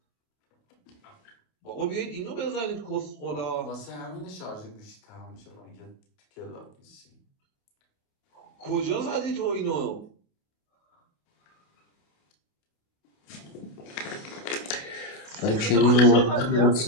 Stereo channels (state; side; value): late; right; 28 ms